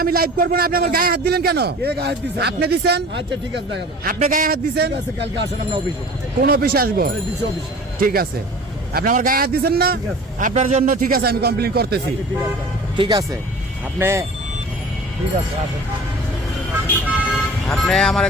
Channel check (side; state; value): both; normal; correlation 0.42